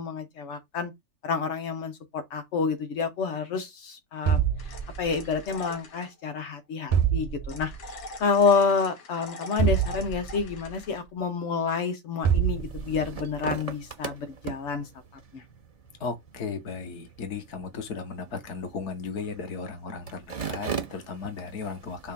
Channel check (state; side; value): late; right; 3.4 ms